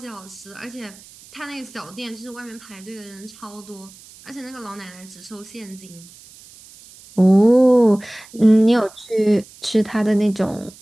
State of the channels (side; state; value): right; noise; hiss, 22 dB below the sound